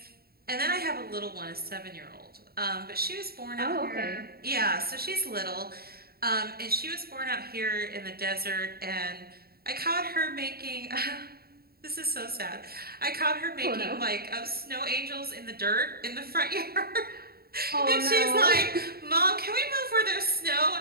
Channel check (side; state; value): left; late; 0.45 ms